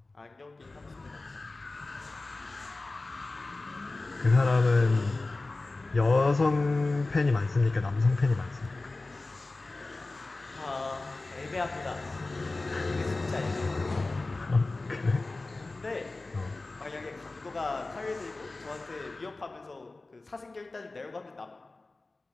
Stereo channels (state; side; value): quieter; right; 3.2 dB